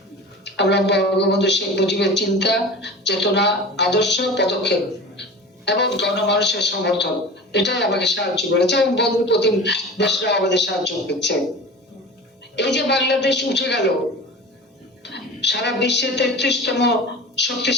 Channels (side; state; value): both; normal; correlation 0.35